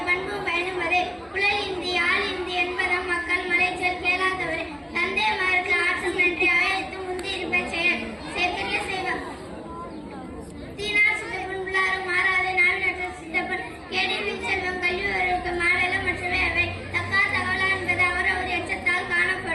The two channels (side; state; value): both; identical; correlation 1.00